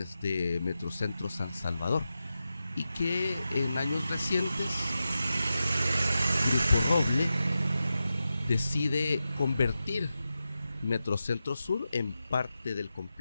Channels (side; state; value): both; inverted; correlation -0.91